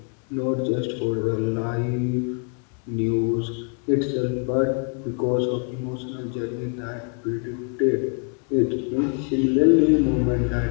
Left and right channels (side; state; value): right; quieter; 39.3 dB